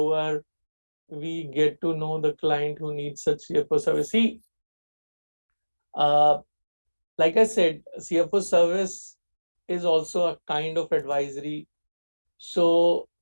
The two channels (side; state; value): both; inverted; correlation -1.00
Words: are we get to know the client who needs such CFO service? See, uh, like I said, CFO service is also a kind of advisory. So